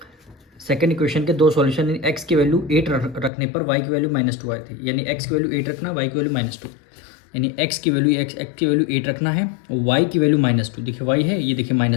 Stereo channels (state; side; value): drops out; right; at 3.3 s